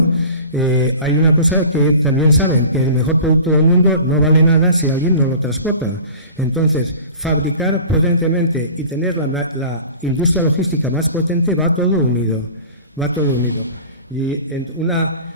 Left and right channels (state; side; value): inverted; both; correlation -0.41